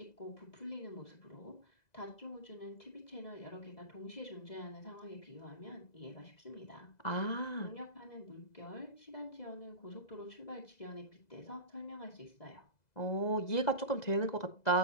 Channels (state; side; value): late; right; 2.0 ms